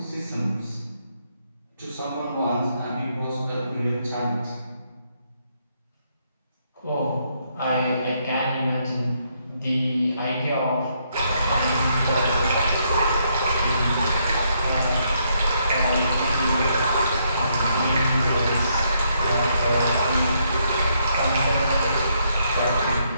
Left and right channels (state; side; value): inverted; both; correlation -0.75